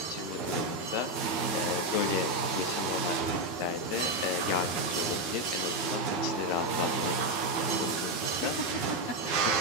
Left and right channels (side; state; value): right; late; 13 ms